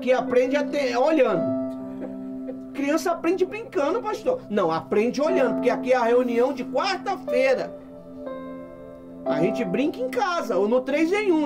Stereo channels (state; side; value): identical; both; correlation 1.00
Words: aprende até olhando. Criança aprende brincando, pastor. Não, aprende olhando, porque aqui é a reunião de quarta-feira. A gente brinca em casa, ou no 3 em